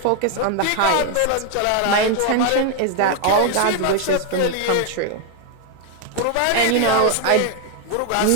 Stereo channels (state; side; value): different; both; correlation 0.01